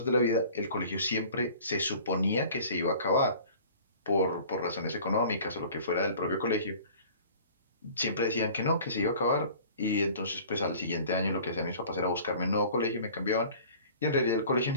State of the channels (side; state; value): both; inverted; correlation -0.47